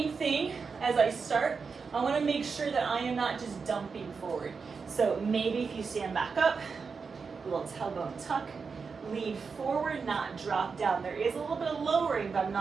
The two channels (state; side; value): quieter; left; 5.2 dB